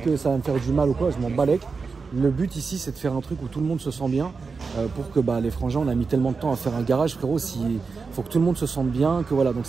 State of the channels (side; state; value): left; quieter; 4.8 dB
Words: ça va me faire du mal ou quoi. Je m'en balèque. Le but ici, c'est de faire un truc où tout le monde se sent bien. Pour que les frangins, on a mis tellement de temps à faire un garage, frérot. Il faut que tout le monde se sente bien. Que voilà. Donc